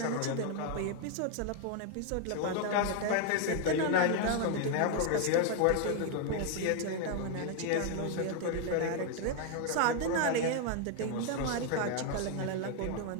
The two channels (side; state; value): both; different; correlation 0.00